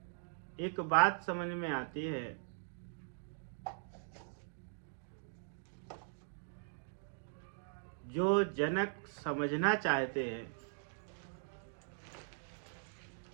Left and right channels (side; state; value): left; silent; digital silence